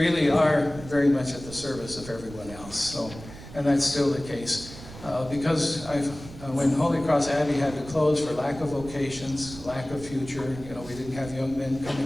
are very much at the service of everyone else. So, and that's still the case. Because when Holy Cross Abbey had to close for lack of vocations, lack of future, we didn't have young men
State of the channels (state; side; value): noise; right; rumble, 15 dB below the sound